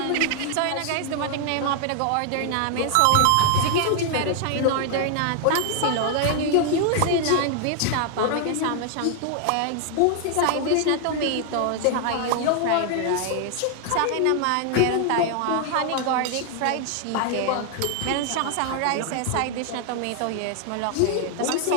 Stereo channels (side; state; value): both; different; correlation 0.00